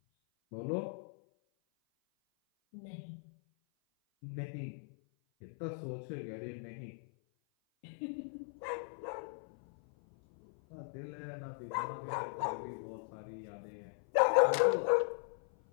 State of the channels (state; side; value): silent; right; 52 dB below the other